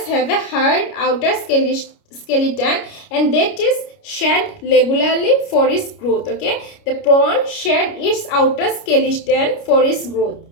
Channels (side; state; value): right; late; 29 ms